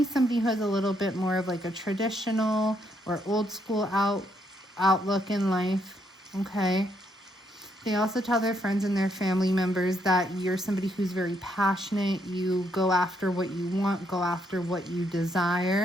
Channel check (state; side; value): normal; both; correlation 0.74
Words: somebody who has a little bit more of like a traditional or old school outlook in life. Okay. They also tell their friends and their family members that you're somebody who's very passionate. You go after what you want, go after what you